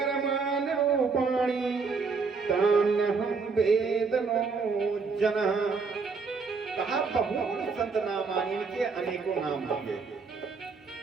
रूपाणि तान्यहं वेदनो जनः। कहा बहूनि सन्ति नामानि, इनके अनेकों नाम होंगे।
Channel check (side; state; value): left; quieter; 4.8 dB